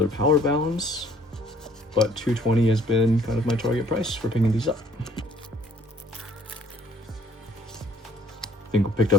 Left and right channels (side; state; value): both; normal; correlation 0.60